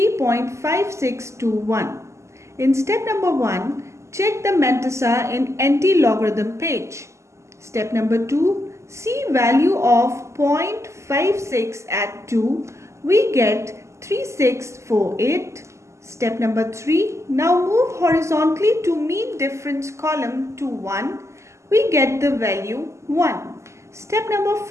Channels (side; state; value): left; late; 0.13 ms